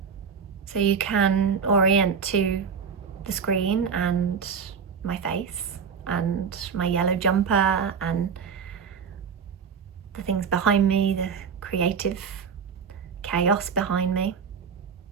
so you can orient to the screen and my face and my yellow jumper and the things behind me, the creative chaos behind me.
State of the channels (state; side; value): quieter; left; 6.4 dB